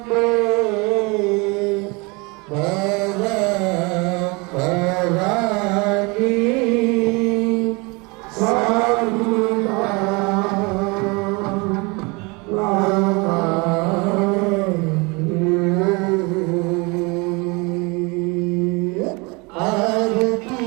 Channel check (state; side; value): quieter; left; 27.9 dB